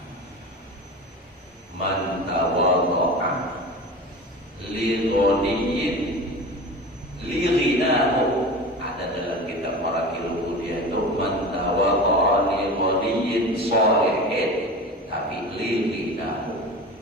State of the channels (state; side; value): normal; both; correlation 0.32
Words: man tawadha'a li ghaniyin li ghinahu. Ada dalam kitab Marakil Mulia itu man tawadha'a li ghaniyin shalihin, tapi li ghinahu